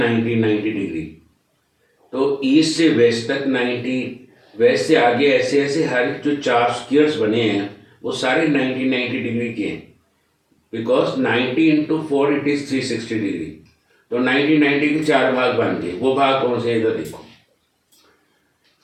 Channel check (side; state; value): both; identical; correlation 1.00